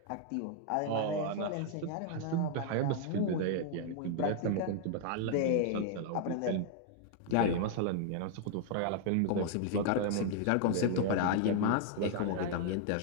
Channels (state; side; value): different; both; correlation 0.00